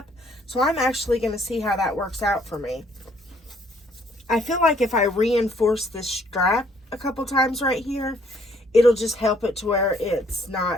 so I'm actually going to see how that works out for me. I feel like if I reinforce this strap a couple times right here, it'll just help it to where it's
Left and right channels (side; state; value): both; normal; correlation 0.64